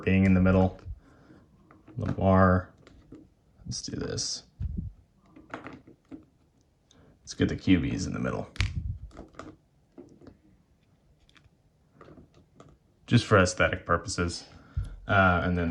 being in the middle. Lamar. Let's do this. Let's get the QBs in the middle. Just for aesthetic purposes. And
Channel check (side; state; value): both; identical; correlation 1.00